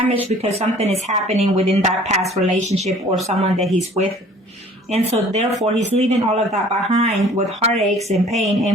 because something is happening within that past relationship or someone that he's with. And so therefore, he's leaving all of that behind with heartaches and pain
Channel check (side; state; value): both; normal; correlation 0.51